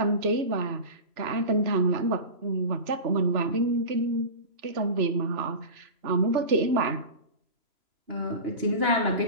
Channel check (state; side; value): late; left; 3.0 ms